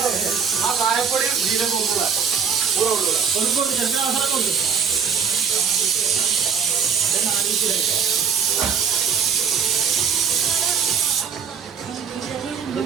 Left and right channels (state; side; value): quieter; left; 6.7 dB